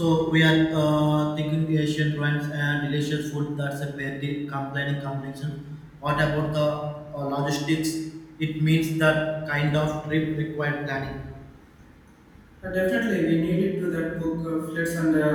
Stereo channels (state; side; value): identical; both; correlation 1.00